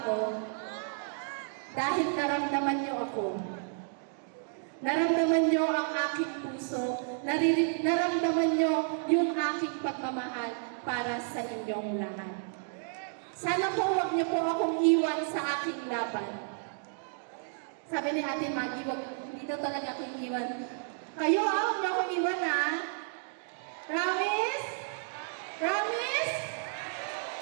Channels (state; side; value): silent; left; digital silence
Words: ako? Dahil naramdaman niyo ako. Naramdaman niyo ang aking puso. Naramdaman niyo yung aking pagmamahal para sa inyong lahat. Sana po huwag niyo po akong iwan sa aking laban. Sabi ni Ate Maggie, hindi daw talaga akong iwan. Kayo, huwag niyo akong iwan, ha? Promise? Promise?